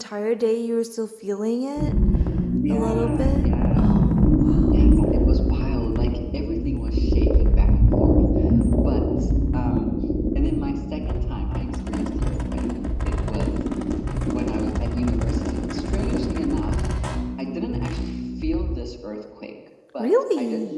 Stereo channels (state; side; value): identical; both; correlation 1.00